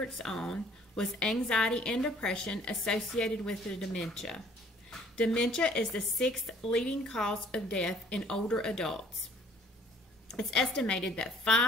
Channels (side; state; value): both; normal; correlation 0.57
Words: on was anxiety and depression associated with the dementia. Dementia is the sixth leading cause of death in older adults. It's estimated that